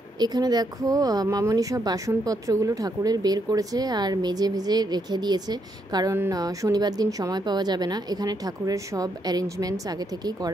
এখানে দেখো মামনি সব বাসনপত্রগুলো ঠাকুরের বের করেছে আর মেজে ভেজে রেখে দিয়েছে, কারণ শনিবার দিন সময় পাওয়া যাবে না। এখানে ঠাকুরের সব অ্যারেঞ্জমেন্টস আগে থেকেই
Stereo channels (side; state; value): both; normal; correlation 0.77